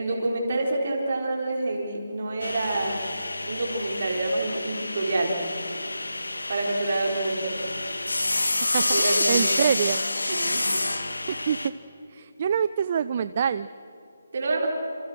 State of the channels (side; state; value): both; inverted; correlation -0.87